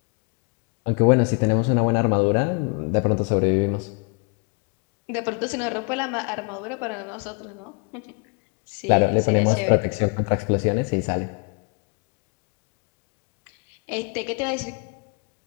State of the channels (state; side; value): quieter; right; 35.4 dB